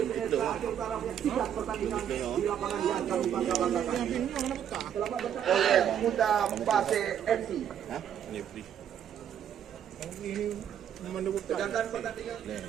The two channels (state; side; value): quieter; left; 9.4 dB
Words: Aceh Utara, menyaksikan pertandingan di lapangan yang kami bangga-banggakan. Selamat datang oleh Muda Pase FC. Sedangkan pertandingan